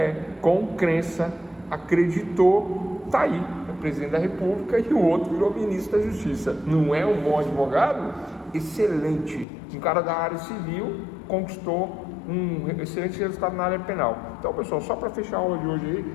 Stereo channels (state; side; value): drops out; right; at 9.5 s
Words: com crença, acreditou, tá aí. Presidente da República, e o outro virou ministro da Justiça. Não é um bom advogado? Excelente. Um cara da área civil conquistou um excelente resultado na área penal. Então, pessoal, só para fechar a aula de hoje aí,